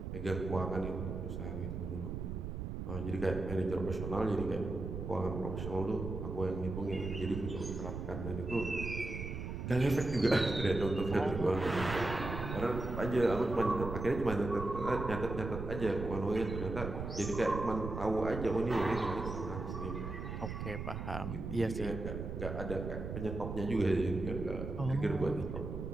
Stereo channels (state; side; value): noise; right; rumble, 5 dB below the sound